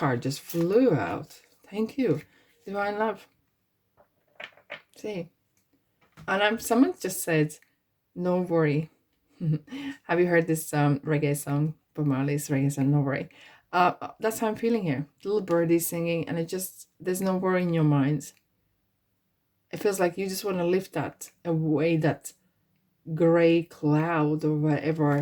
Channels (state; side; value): identical; both; correlation 1.00